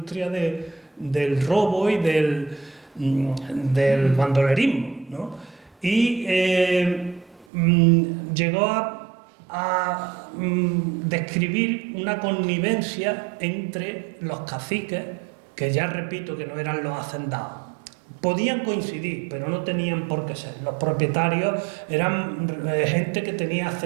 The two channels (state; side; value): drops out; left; at 7.5 s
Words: del robo y del bandolerismo, ¿no? Y llegó a describir una connivencia entre los caciques, que ya repito que no eran los hacendados. Podían coincidir, pero no tenían por qué ser. Los propietarios eran gente que tenía